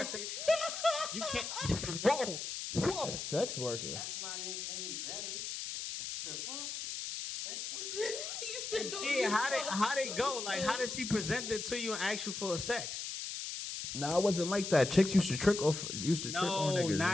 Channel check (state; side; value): noise; left; hiss, 5 dB below the sound